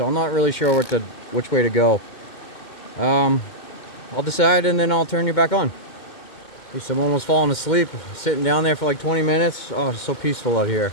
I'm not really sure which way to go. I'll decide and then I'll turn you back on. At least I'm almost falling asleep, sitting down there for like 20 minutes. Oh, it's so peaceful out here.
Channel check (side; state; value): right; late; 2.1 ms